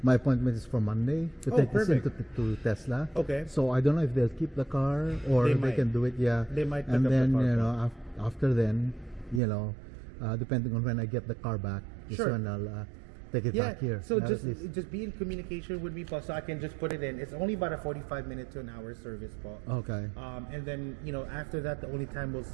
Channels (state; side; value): drops out; left; at 9.4 s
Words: appointment is for Monday to take this into to Tesla. Okay. So I don't know if they'll keep the car or they can do it. They might pick and up then the car. After then, depending on when I get the car back, is when I'll take it back here. So just be in communication with me, po, so I can just put it in. It's only about a 45-minute to an hour service, po. Okay. And then after that, the only time we'll